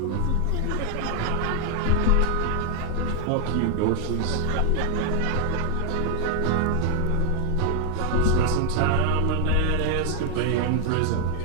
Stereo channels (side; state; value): both; different; correlation 0.00